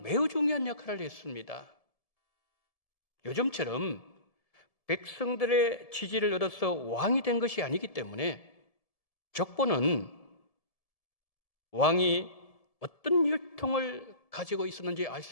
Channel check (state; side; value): late; right; 1.7 ms